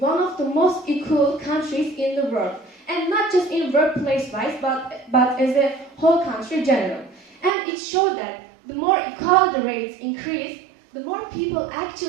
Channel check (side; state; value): left; drops out; at 7.6 s